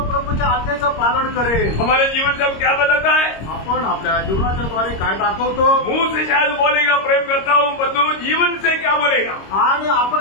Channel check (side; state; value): right; late; 26 ms